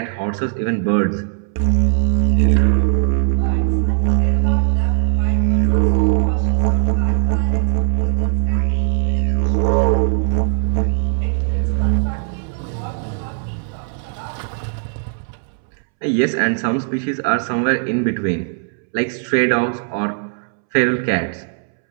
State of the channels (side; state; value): left; silent; 67 dB below the other